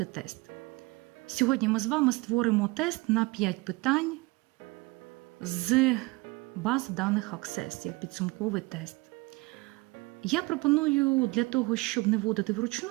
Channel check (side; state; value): left; quieter; 23.9 dB